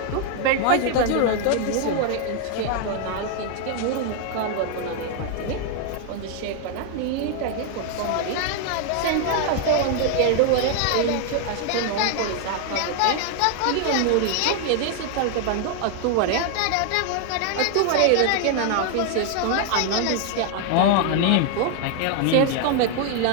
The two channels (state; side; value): different; both; correlation 0.00